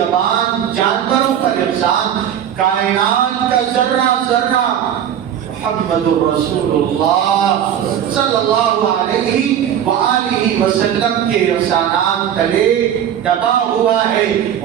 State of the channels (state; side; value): quieter; left; 9.7 dB